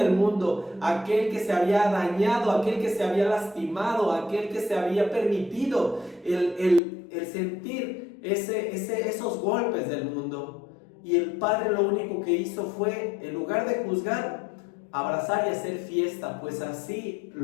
mundo, aquel que se había dañado, aquel que se había lastimado, aquel que se había permitido el sentir esos golpes del mundo. Y el Padre lo único que hizo fue, en lugar de juzgar, abrazar y hacer fiesta, pues así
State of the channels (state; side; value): drops out; right; at 6.8 s